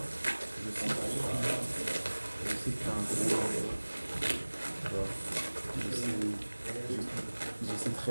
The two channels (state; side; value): inverted; both; correlation -1.00